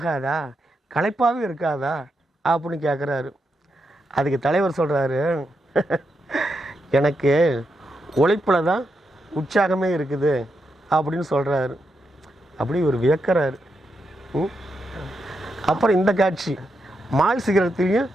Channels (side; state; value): both; normal; correlation 0.84